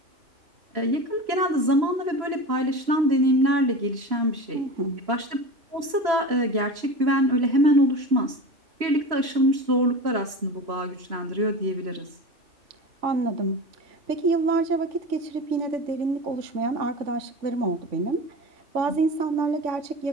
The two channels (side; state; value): left; late; 3.0 ms